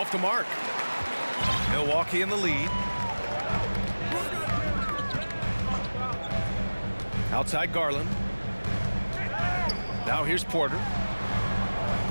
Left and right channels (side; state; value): both; inverted; correlation -1.00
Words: the mark. Milwaukee in the lead. Outside Garland. Now here's Porter.